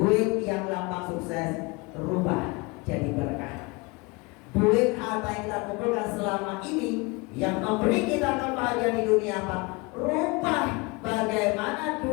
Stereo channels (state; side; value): quieter; right; 26.7 dB